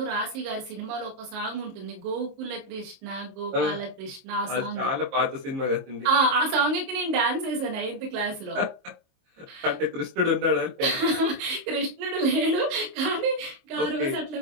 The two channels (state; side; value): late; left; 23 ms